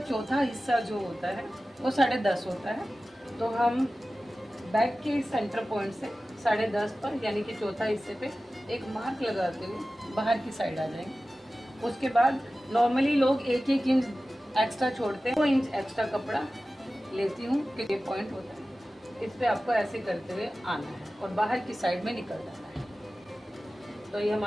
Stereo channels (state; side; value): normal; both; correlation 0.96